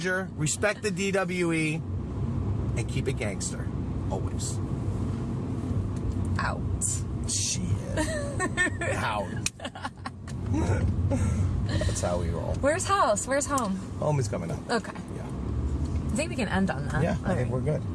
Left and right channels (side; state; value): both; identical; correlation 1.00